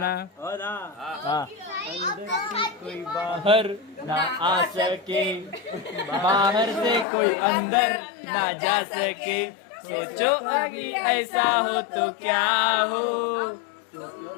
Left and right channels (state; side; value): drops out; right; at 7.1 s